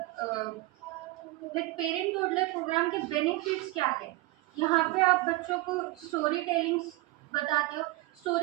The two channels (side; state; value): left; quieter; 19.9 dB